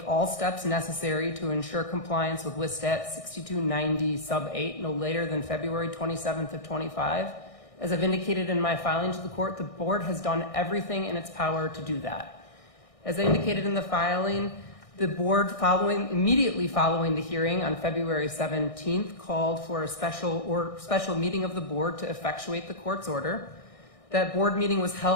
all steps necessary to ensure compliance with Listat 6290 sub 8 no later than February 27th of 25. As I've indicated in my filing to the court, the board has done everything in its power to do that. As I indicated in the filing, the board immediately following the hearing on February 17th called for a special meeting of the board to effectuate the court's order. That board meeting was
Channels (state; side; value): late; right; 1.6 ms